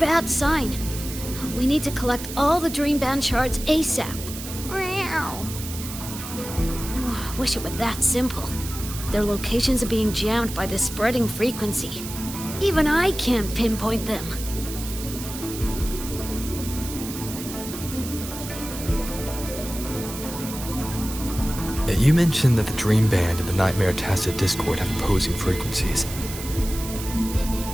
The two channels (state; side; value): noise; right; hiss, 10 dB below the sound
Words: sign. We need to collect all the Dream Band shards ASAP. Wish it were that simple. Their locations are being jammed by this spreading frequency. Even I can't pinpoint them. You mentioned that the Dream Band and the Nightmare Tacit Discord have opposing frequencies.